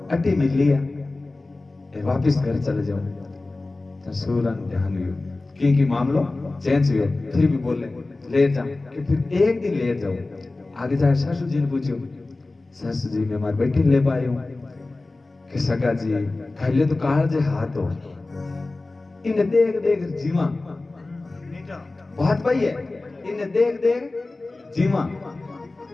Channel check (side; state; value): right; quieter; 3.2 dB